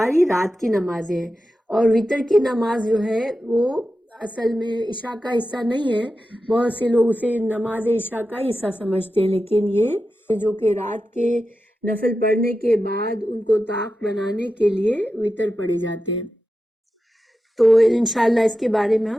رات کی نمازیں ہیں، اور وتر کی نماز جو ہے وہ اصل میں عشاء کا حصہ نہیں ہے۔ بہت سے لوگ اسے نماز عشاء کا حصہ سمجھتے ہیں، لیکن یہ جو کہ رات کے نفل پڑھنے کے بعد ان کو طاق بنانے کے لیے وتر پڑھے جاتے ہیں۔ تو انشاءاللہ اس کے بارے میں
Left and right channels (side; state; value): both; normal; correlation 0.91